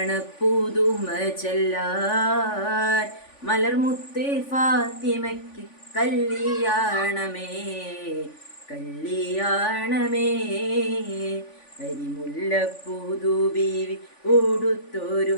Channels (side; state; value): right; late; 3.5 ms